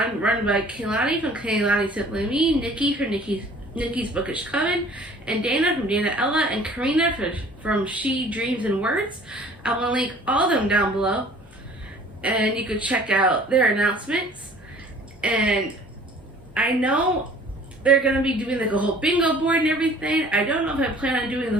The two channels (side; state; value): both; normal; correlation 0.51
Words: run by Kaylani from Kaylani Simply Me, Nikki from Nikki Nikki's Bookish Coven, and Dana from Dana Ella, and Karina from She Dreams and Words. I will link all of them down below, and you can check out their announcements. And I know they're going to be doing like a whole bingo board and everything. I don't know if I plan on doing